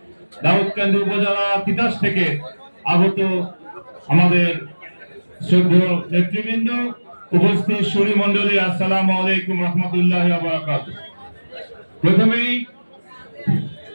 দাউদকান্দি উপজেলা তিতাস থেকে আগত আমাদের শ্রদ্ধেয় নেতৃবৃন্দ, উপস্থিত সুরী মন্ডলী, আসসালামু আলাইকুম রহমতুল্লাহি ওয়া বারাকাতুহু। প্রথমেই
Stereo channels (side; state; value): both; inverted; correlation -1.00